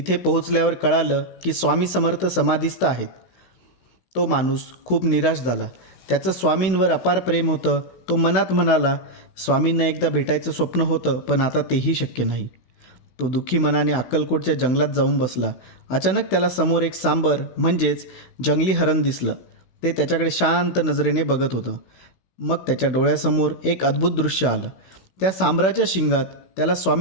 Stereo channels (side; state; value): right; late; 16 ms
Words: पोहोचल्यावर कळालं की स्वामी समर्थ समाधीस्थ आहेत. तो माणूस खूप निराश झाला. त्याचं स्वामींवर अपार प्रेम होतं. तो मनात म्हणाला, स्वामींना एकदा भेटायचं स्वप्न होतं, पण आता तेही शक्य नाही. तो दुःखी मनाने अक्कलकोटच्या जंगलात जाऊन बसला. अचानक त्याला समोर एक सांबर म्हणजेच जंगली हरण दिसलं. ते त्याच्याकडे शांत नजरेने बघत होतं. मग त्याच्या डोळ्यासमोर एक अद्भुत दृश्य आलं. त्या सांबराच्या शिंगात त्याला